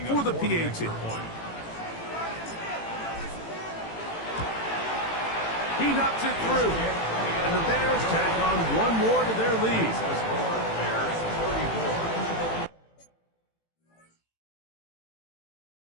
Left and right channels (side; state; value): right; late; 18 ms